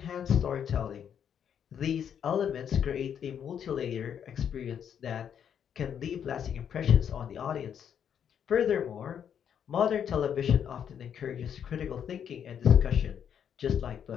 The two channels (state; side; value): quieter; right; 8.4 dB